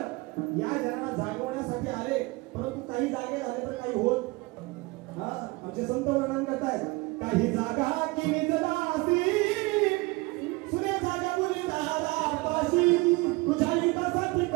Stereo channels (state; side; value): quieter; left; 23.8 dB